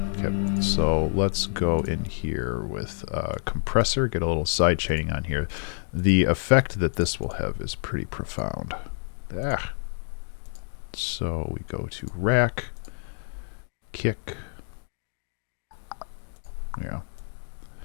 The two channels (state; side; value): silent; right; digital silence